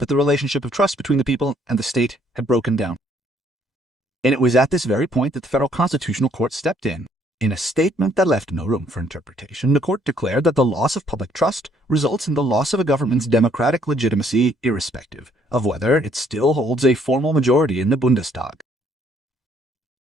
the relationship of trust between the people and the state had broken down. And it was at this very point that the Federal Constitutional Court stepped in. In a statement that left no room for interpretation, the court declared that the loss of public trust results in the loss of a government's democratic legitimacy, irrespective of whether it still holds a formal majority in the Bundestag.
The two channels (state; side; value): normal; both; correlation 0.65